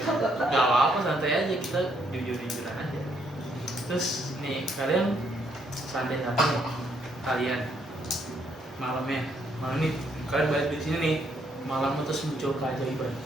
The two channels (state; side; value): normal; both; correlation 0.72